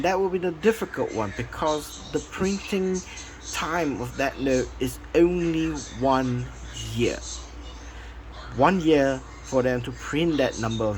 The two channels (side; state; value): both; identical; correlation 1.00